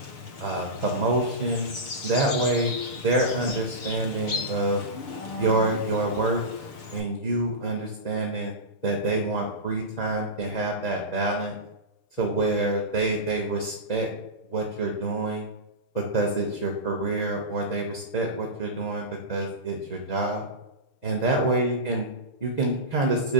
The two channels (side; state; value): right; late; 6.7 ms